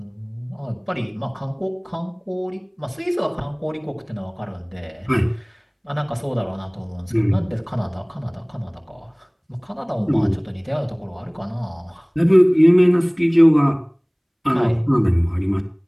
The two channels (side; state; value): both; identical; correlation 1.00